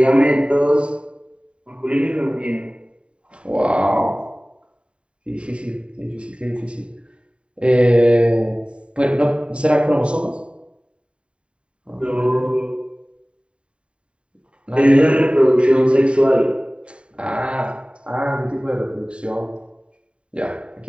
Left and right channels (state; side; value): late; left; 0.056 ms